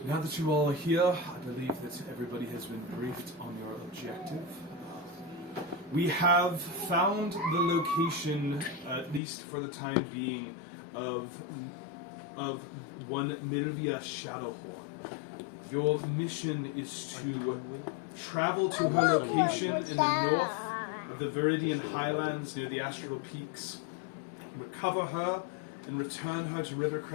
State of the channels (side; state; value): right; drops out; at 9.2 s